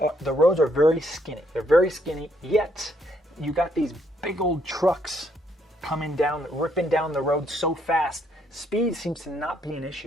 are very skinny. They're very skinny, yet you got these big old trucks coming down, ripping down the road so fast. Speed seems to not be an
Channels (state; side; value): normal; both; correlation 0.71